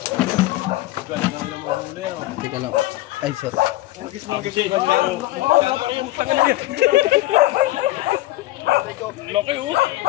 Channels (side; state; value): right; quieter; 17.7 dB